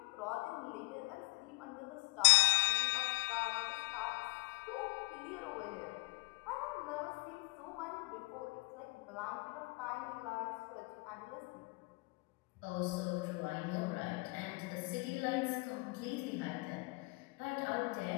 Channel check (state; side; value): quieter; right; 26.3 dB